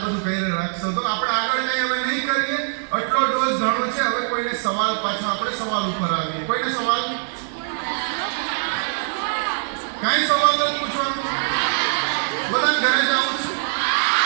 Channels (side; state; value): left; silent; digital silence